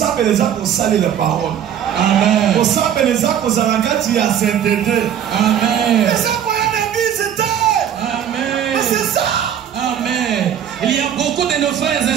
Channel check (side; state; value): left; quieter; 9.4 dB